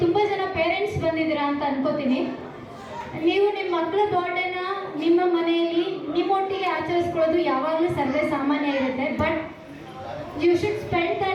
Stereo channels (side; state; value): both; identical; correlation 1.00